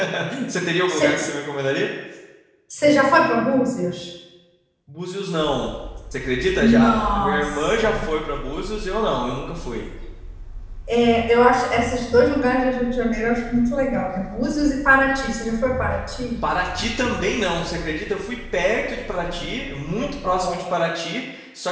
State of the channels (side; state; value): both; identical; correlation 1.00